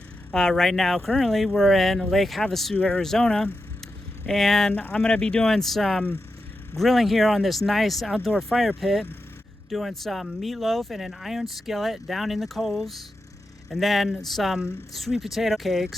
Right now, currently, we're in Lake Havasu, Arizona, and I'm going to be doing some grilling here on this nice outdoor fire pit, doing some meatloaf in an iron skillet down in the coals, and then some sweet potato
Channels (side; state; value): both; normal; correlation 0.89